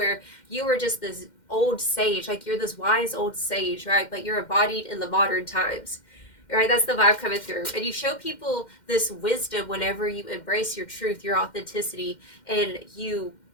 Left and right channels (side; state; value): right; late; 2.1 ms